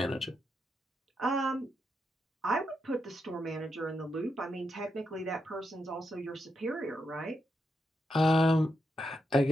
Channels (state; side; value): normal; both; correlation 0.84